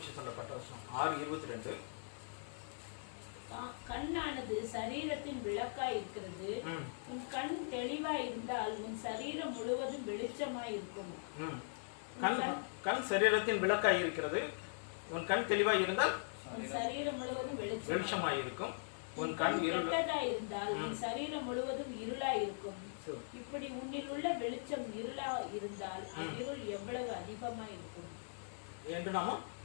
சொல்லப்பட்ட வசனம் 6:22. கண்ணானது சரீரத்தின் விளக்காய் இருக்கிறது. உன் கண் தெளிவாய் இருந்தால் உன் சரீரம் முழுவதும் வெளிச்சமாய் இருக்கும். கண் சரீரத்தின் விளக்காய் இருக்கிறது. உன் கண் தெளிவாய் இருந்தால் உன் சரீரம் முழுவதும் வெளிச்சமாய் இருக்கும். உன் கண் இருளாய் இருந்தால் உன் சரீரம் முழுவதும் இருளாய் இருக்கும். இப்படி உன்னில் உள்ள வெளிச்சம் இருளா இருந்தால் இருள் எவ்வளவு அதிகமாய் இருக்கும் என்று நாம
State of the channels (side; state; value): right; silent; digital silence